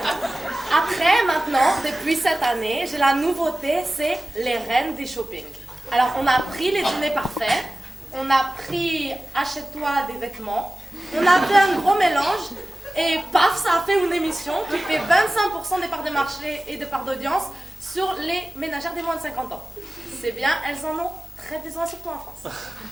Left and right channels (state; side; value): normal; both; correlation 0.97